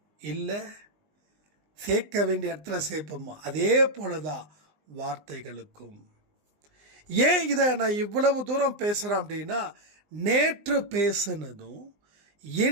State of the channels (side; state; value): left; late; 19 ms